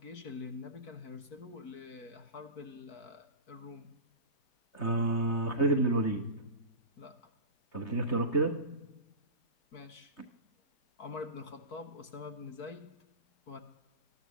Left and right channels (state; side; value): late; right; 4.5 ms